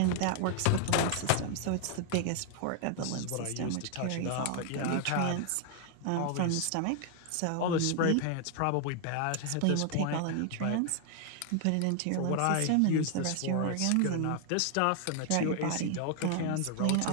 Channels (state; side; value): different; both; correlation 0.00